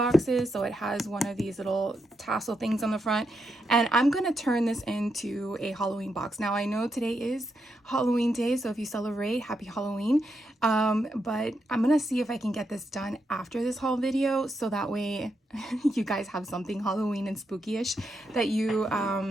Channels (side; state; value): both; normal; correlation 0.83